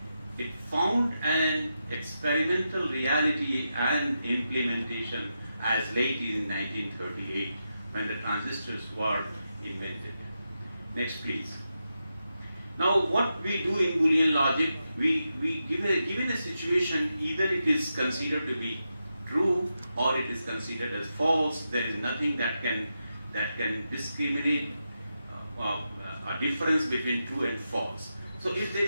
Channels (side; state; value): both; inverted; correlation -0.88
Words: found an experimental reality and implementation as late in 1938, when the transistors were invented. Next please. Now what we do in Boolean logic, we given a situation, either it is considered to be true or it is considered as false. There is nothing that can discriminate a difference between true and false. So if there